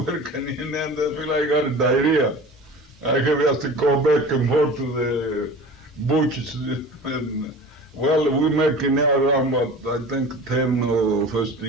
in there, I feel like I got a diarrhea. I have to go back and forth to butchers. And, well, we making now around about, I think, $10 or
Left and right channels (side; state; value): both; normal; correlation 0.38